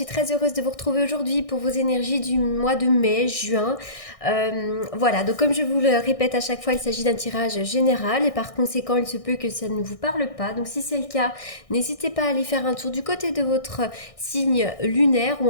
très heureuse de vous retrouver aujourd'hui pour vos énergies du mois de mai, juin. Voilà, donc comme je vous le répète à chaque fois, il s'agit d'un tirage général et par conséquent, il se peut que ça ne vous parle pas. Donc si c'est le cas, n'hésitez pas à aller faire un tour du côté de votre signe lunaire ou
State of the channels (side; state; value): right; late; 1.6 ms